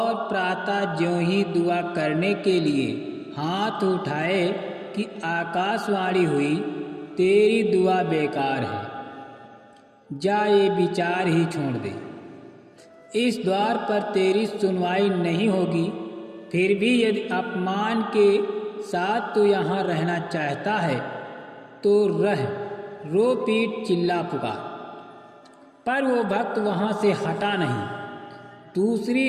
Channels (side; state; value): both; identical; correlation 1.00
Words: प्रातः ज्यों ही दुआ करने के लिए हाथ उठाए कि आकाशवाणी हुई, तेरी दुआ बेकार है, जा ये विचार ही छोड़ दे। इस द्वार पर तेरी सुनवाई नहीं होगी। फिर भी यदि अपमान के साथ तू यहाँ रहना चाहता है तो रह, रो पीट चिल्ला पुकार। पर वो भक्त वहाँ से हटा नहीं।